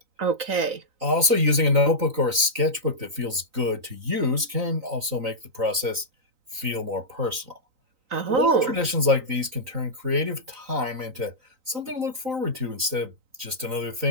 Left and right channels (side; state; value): left; late; 3.9 ms